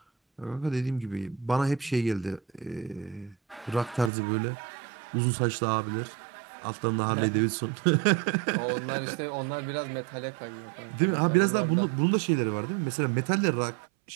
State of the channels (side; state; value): left; drops out; at 4.1 s